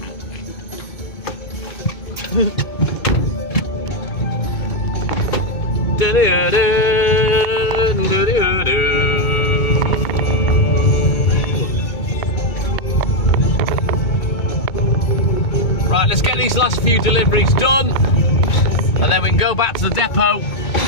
Right, let's get these last few deliveries done, and then we can go back to the depot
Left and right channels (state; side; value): late; right; 2.2 ms